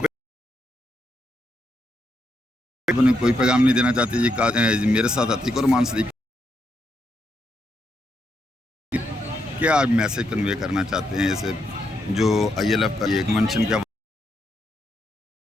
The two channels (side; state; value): both; normal; correlation 0.80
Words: कोई पैगाम नहीं देना चाहती जी? मेरे साथ अतीक और मान सदीक क्या आप मैसेज कन्वे करना चाहते हैं ऐसे जो ILF का ये कन्वेंशन क्या?